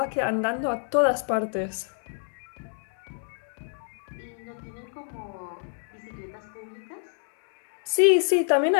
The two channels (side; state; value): right; silent; digital silence